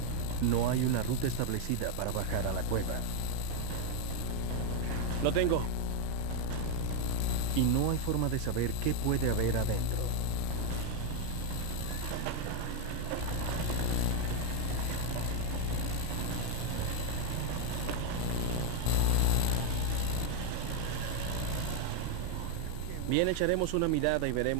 No hay una ruta establecida para bajar a la cueva. Lo tengo. Y no hay forma de saber qué puede haber adentro. Bien, echaremos una mirada y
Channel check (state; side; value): normal; both; correlation 0.01